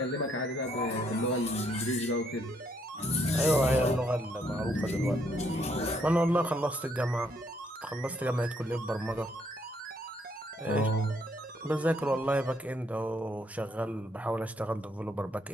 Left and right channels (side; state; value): both; normal; correlation 0.71